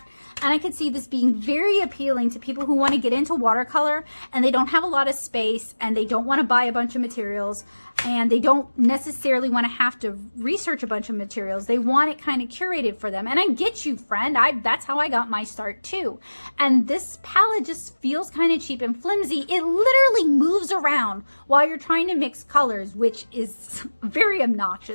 and I could see this being very appealing to people who want to get into watercolor and they don't have a lot of space and they don't want to buy a bunch of materials and they don't necessarily want to have to research a bunch of materials. They want it kind of curated for them, and I get you, friend. That's how I got my start too. And this palette just feels kind of cheap and flimsy. It literally moves around while you're trying to mix colors, which is very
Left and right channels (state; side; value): inverted; both; correlation -1.00